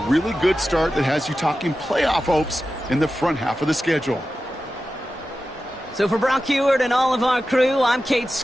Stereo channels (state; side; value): normal; both; correlation 0.93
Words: really good start that has you talking playoff hopes in the front half of the schedule. So for Brock Heward and all of our crew, I'm Kate